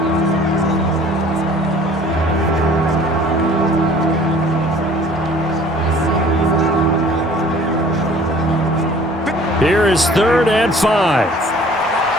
Here is 3rd and 5.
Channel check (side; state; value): both; normal; correlation 0.51